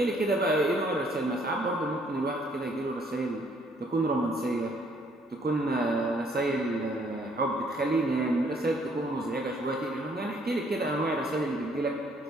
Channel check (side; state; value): both; normal; correlation 0.65